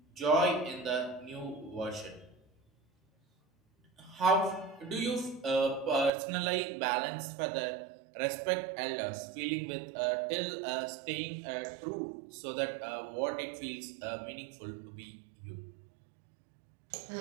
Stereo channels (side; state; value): left; drops out; at 6.1 s